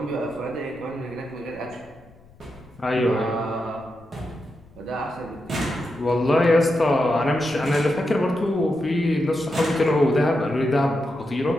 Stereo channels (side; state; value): left; noise; rumble, 26 dB below the sound